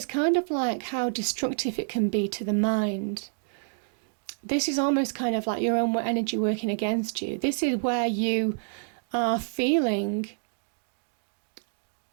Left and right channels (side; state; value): left; silent; digital silence